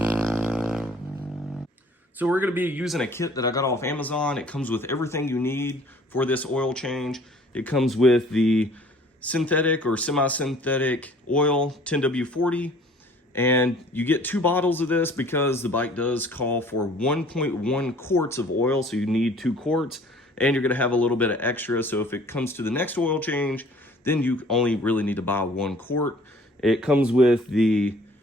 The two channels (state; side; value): normal; both; correlation 0.53